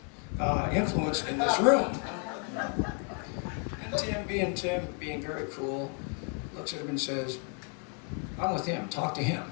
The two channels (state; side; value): quieter; right; 38.6 dB